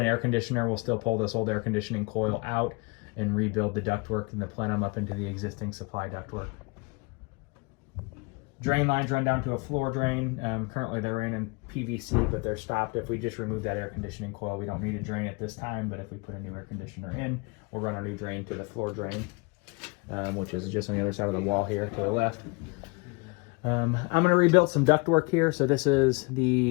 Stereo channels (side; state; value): right; quieter; 29.1 dB